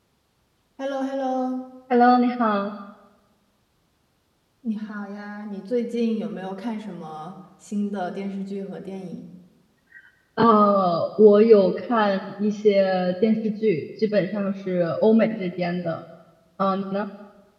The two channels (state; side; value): identical; both; correlation 1.00